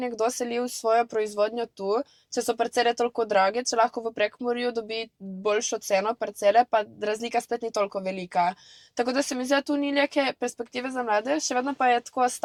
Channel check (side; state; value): both; identical; correlation 1.00